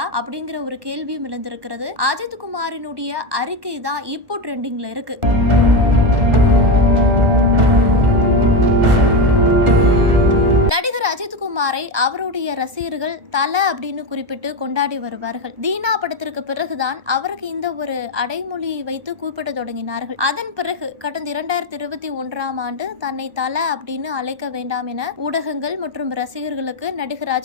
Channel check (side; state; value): left; late; 1.2 ms